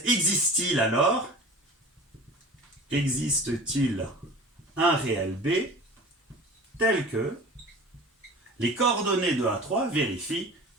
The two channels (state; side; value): normal; both; correlation 0.39